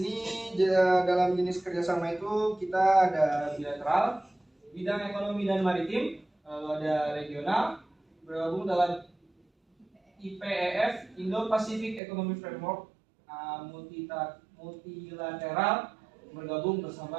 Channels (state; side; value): drops out; left; at 12.0 s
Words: dalam jenis kerjasama itu kita ada bilateral, bidang ekonomi dan maritim, lalu ada regional, bergabung dalam IPEF (Indo-Pacific Economic Framework), multilateral, bergabung